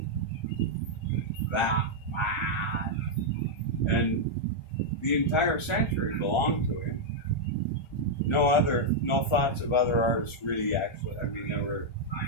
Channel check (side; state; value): right; late; 1.4 ms